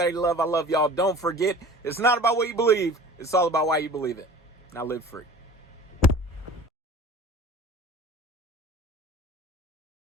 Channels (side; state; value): both; normal; correlation 0.43